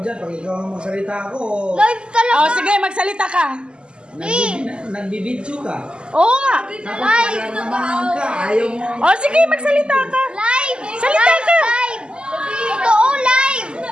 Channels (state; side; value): late; left; 0.050 ms